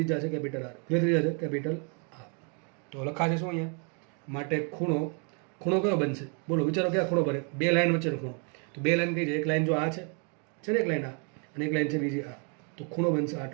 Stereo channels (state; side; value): quieter; left; 38.2 dB